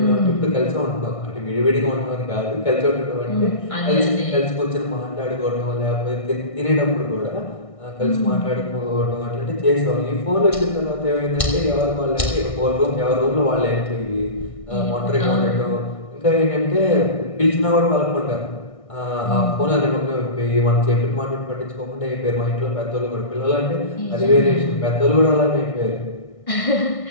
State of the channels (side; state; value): right; late; 1.6 ms